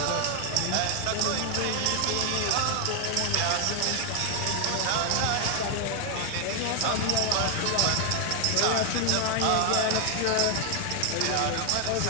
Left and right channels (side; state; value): both; different; correlation 0.00